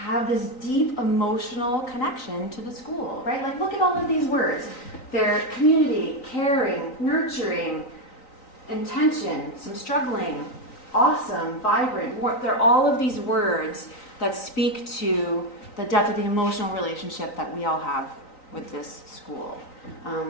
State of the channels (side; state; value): right; late; 3.9 ms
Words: this deep emotional connection to the school, right? Like, look at all of these words. They're community, caring, nurturing, intention, some struggling, awesome, vibrant. They're all of these words that speak to the depth of the emotional relationship that we all have with this school.